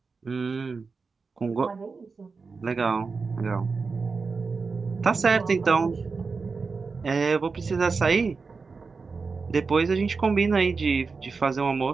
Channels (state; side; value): quieter; left; 4.6 dB